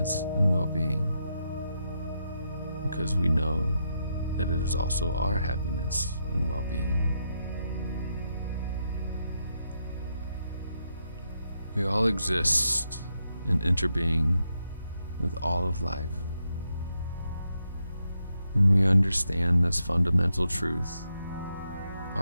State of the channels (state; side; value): inverted; both; correlation -0.82